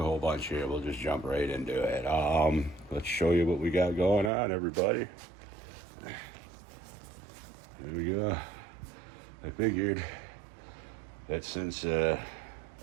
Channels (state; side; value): drops out; left; at 4.3 s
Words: whole bunch here. We'll just jump right into it. Let's show you what we got going on, everybody. There we go. I figured that since I